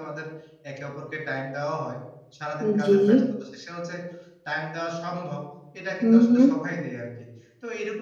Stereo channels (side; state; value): both; identical; correlation 1.00